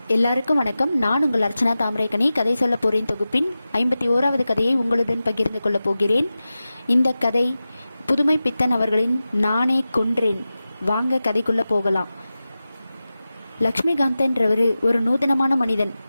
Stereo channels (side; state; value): both; inverted; correlation -0.94